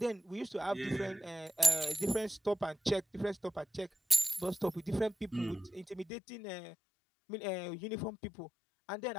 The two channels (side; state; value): right; drops out; at 6.1 s